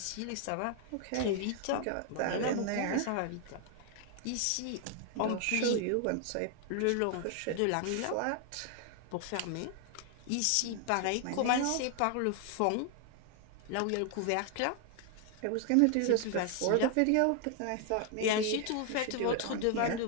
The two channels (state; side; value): different; both; correlation 0.00